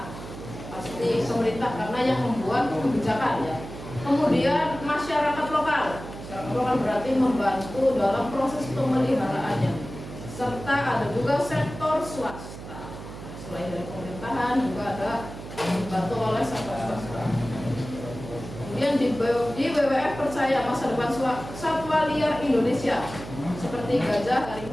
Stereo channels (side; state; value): right; noise; hum, 12 dB below the sound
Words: pasti pemerintah karena yang membuat kebijakan ya. Kemudian masyarakat lokal. Masyarakat lokal berarti membantu dalam proses pemeliharaannya. Serta ada juga sektor swasta. Selain dari pemerintahan juga ada dibantu oleh sektor swasta. Kemudian di WWF percaya masa depan satwa liar Indonesia seperti gajah,